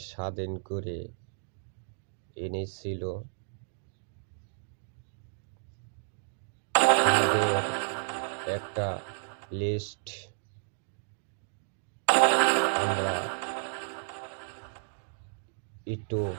স্বাধীন করে এনেছিল তাদের একটা লিস্ট আমরা একটু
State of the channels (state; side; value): silent; left; digital silence